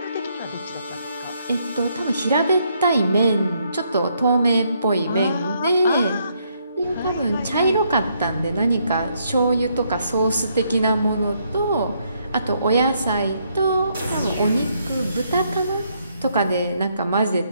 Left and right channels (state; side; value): inverted; both; correlation -0.73